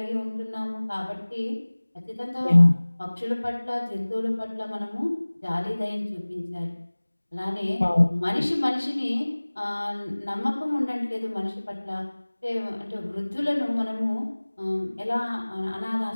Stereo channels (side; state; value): both; inverted; correlation -1.00